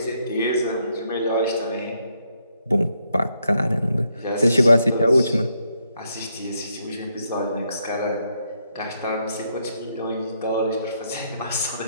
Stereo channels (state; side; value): inverted; both; correlation -0.77